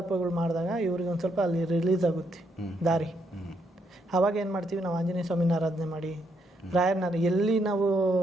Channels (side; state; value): both; normal; correlation 0.76